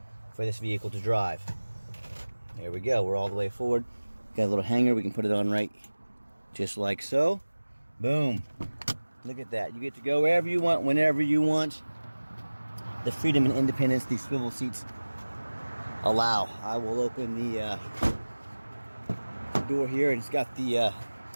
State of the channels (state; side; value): inverted; both; correlation -1.00